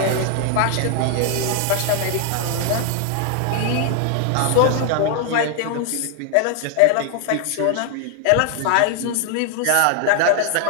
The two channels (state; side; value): different; both; correlation 0.00